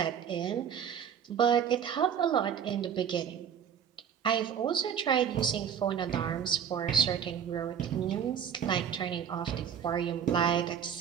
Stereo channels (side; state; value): left; quieter; 8.0 dB